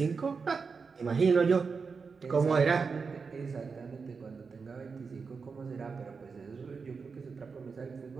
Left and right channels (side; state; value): left; quieter; 5.1 dB